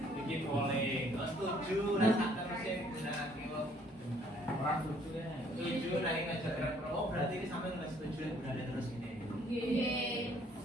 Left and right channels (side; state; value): both; normal; correlation 0.62